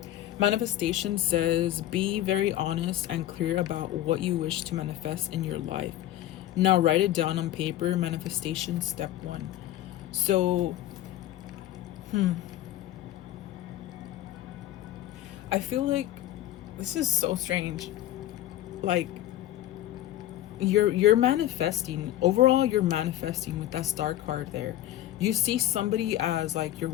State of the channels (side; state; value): right; quieter; 13.7 dB